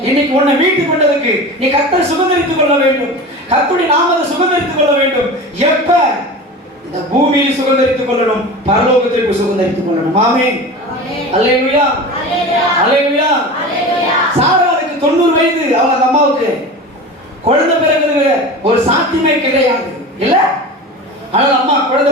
இன்னைக்கு உன்னை மீட்டுக் கொண்டதுக்கு நீ கர்த்தரை சுகந்தரித்துக் கொள்ள வேண்டும். கர்த்தருடைய நாமத்தை சுகந்தரித்துக் கொள்ள வேண்டும். எப்ப? இந்த பூமியில் சுகந்தரித்துக் கொள்ளணும், பரலோகத்திற்கு சுகந்தரித்துக் கொள்ளணும். ஆமென். அல்லேலூயா, அல்லேலூயா. சாராளுக்கு 90 வயது. அவங்க அம்மாவுக்கு குழந்தை பிறகு ஒரு சாத்தியமே கிடையாது இல்ல. ஆனால் அம்மா குழந்தை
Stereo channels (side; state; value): both; normal; correlation 0.32